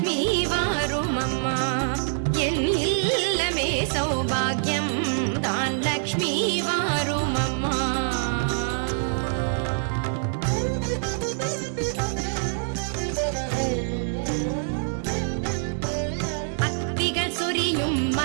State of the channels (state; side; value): silent; left; 62 dB below the other